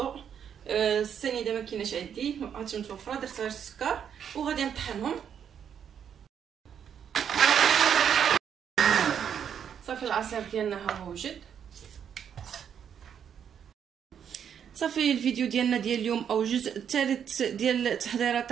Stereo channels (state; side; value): quieter; left; 8.3 dB